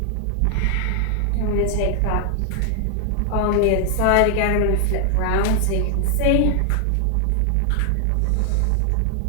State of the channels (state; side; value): different; both; correlation 0.00